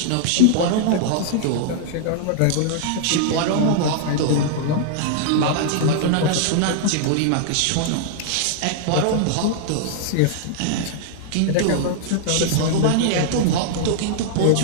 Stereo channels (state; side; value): different; both; correlation -0.01